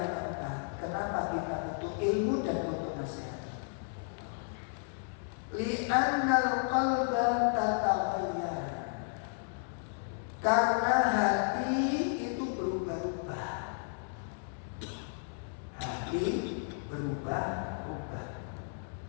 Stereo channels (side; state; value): right; silent; digital silence